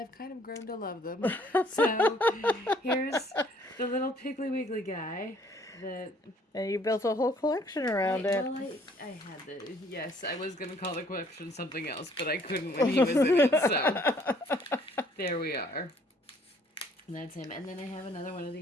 kind of grown to love them. So here's the little Piggly Wiggly guy. And you built a whole collection around it. Well, I had yes, I was going to call the collection something else, but I couldn't when he was in it, so there we are. And that's him. And then I have another one of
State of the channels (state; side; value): normal; both; correlation 0.61